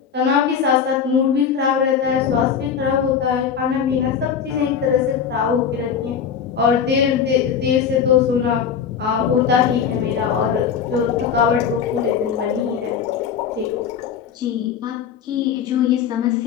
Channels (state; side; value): quieter; right; 7.4 dB